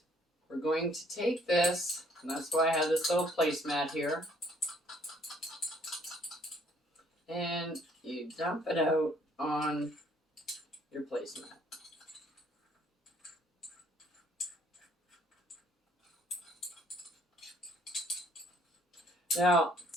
we're going to take this, and that's why I have this little placemat here, and you dump it out on your placemat. Now,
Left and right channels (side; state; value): both; normal; correlation 0.63